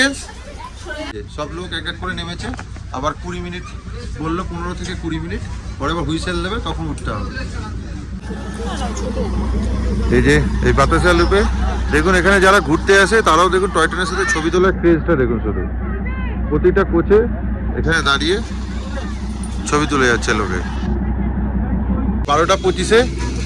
সব লোক এক এক করে নেমেছে, আবার 20 মিনিট বললো, 15 থেকে 20 মিনিট পরে আবার হুইসেল দেবে, তখন উঠতে হবে। এই যে এই বাতাসা লুপে দেখুন, এখানে যারা ঘুরতে আসে তারাও দেখুন টয় ট্রেনের সাথে ছবি তোলার ক্রেজটা দেখুন। শুধু প্রতিটা কোচে এখানে দাঁড়িয়ে ছবি তুলে যাচ্ছে লোকে। 12:25-এ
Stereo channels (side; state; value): both; identical; correlation 1.00